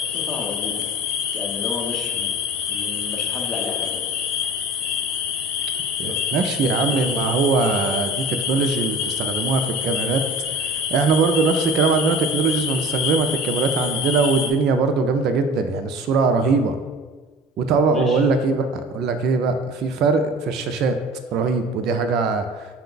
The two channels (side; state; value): both; normal; correlation 0.40